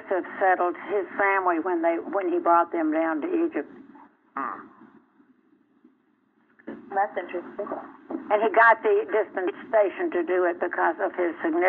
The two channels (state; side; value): identical; both; correlation 1.00